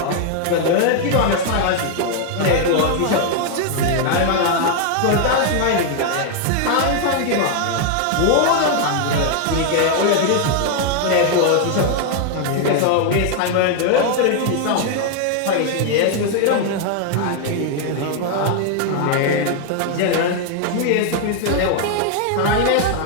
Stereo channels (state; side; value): different; both; correlation 0.00